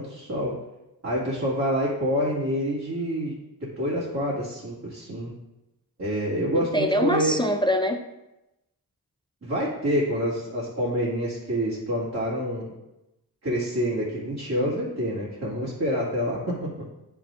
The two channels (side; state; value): both; normal; correlation 0.12